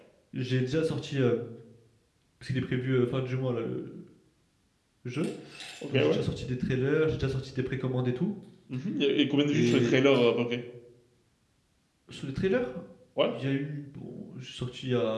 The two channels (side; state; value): both; identical; correlation 1.00